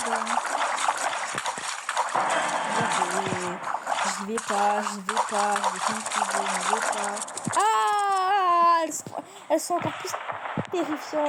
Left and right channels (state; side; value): identical; both; correlation 1.00